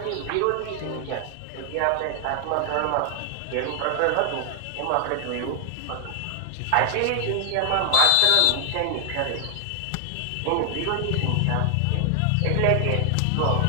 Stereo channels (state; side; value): different; both; correlation 0.00